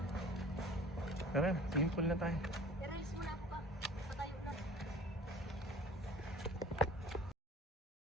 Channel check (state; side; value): normal; both; correlation 0.46